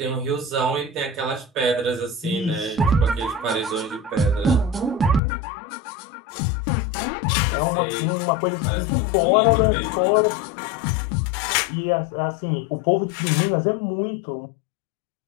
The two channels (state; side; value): drops out; right; at 5.2 s